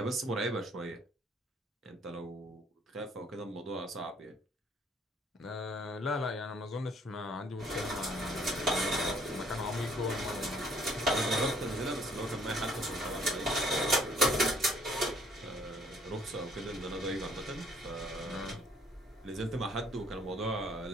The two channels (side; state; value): both; normal; correlation 0.61